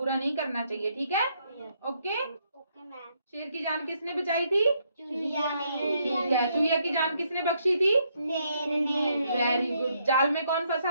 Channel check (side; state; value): both; inverted; correlation -0.73